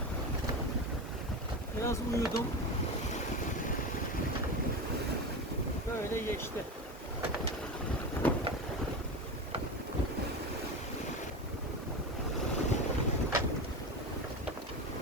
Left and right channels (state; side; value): normal; both; correlation 0.22